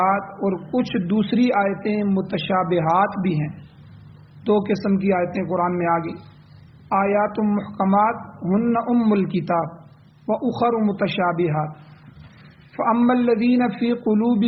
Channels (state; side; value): identical; both; correlation 1.00